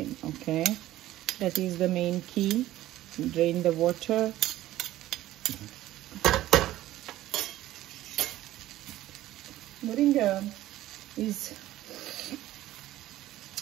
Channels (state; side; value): quieter; left; 14.8 dB